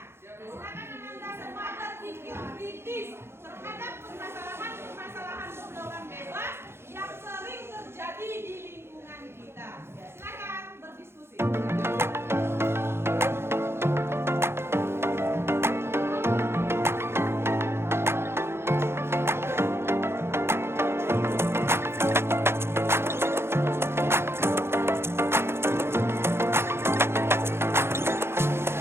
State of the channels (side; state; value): left; late; 0.12 ms